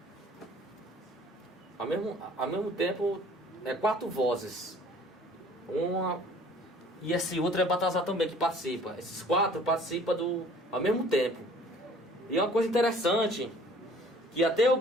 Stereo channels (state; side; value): normal; both; correlation 0.52